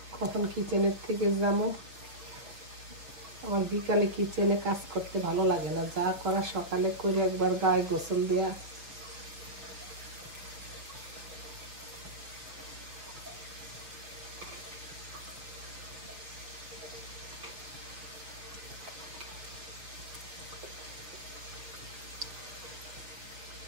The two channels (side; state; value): left; late; 6.1 ms